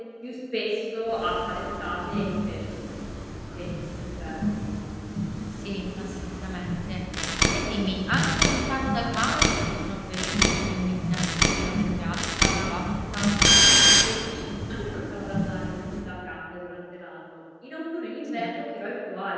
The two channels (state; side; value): identical; both; correlation 1.00